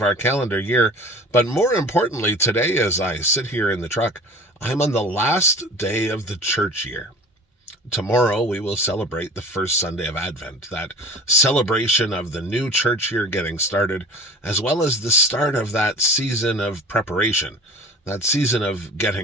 our calendar year, but more importantly, today as I sit here in the truck, I'm on the last day of the church year. Tomorrow we will celebrate the first Sunday of Advent, that celebration of the new church year getting started, as well as the start of that season of preparation, that season of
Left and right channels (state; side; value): normal; both; correlation 0.39